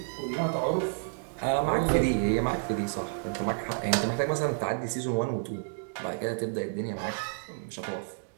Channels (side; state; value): left; silent; digital silence